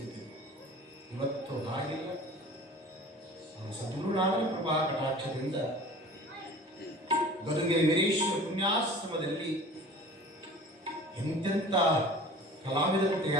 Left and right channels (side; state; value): both; normal; correlation 0.42